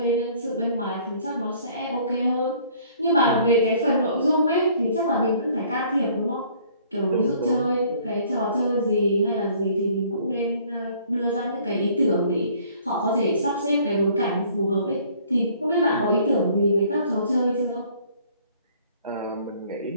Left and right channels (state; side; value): inverted; both; correlation -0.57